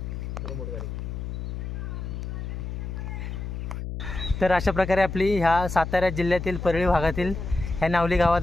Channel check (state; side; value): noise; left; hum, 6 dB below the sound